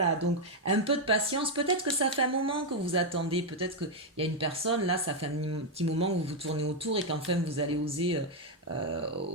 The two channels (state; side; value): normal; both; correlation 0.01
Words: donc un peu de patience. Peut-être que ça fait un moment que vous attendez. Peut-être qu'il y a une personne, là, ça fait un petit moment que vous vous tournez autour et qu'enfin vous allez oser